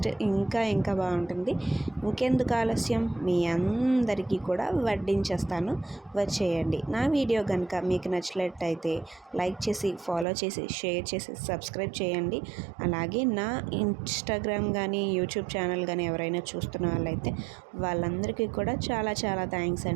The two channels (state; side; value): drops out; left; at 10.2 s